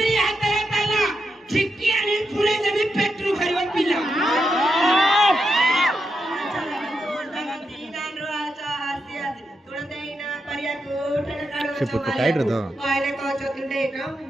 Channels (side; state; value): both; normal; correlation 0.85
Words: हातरे ताला छिक्की आनी फुले देबी पेट्रो खरिबो पिला से पुट टाइट रह कहले को चतुंडे काम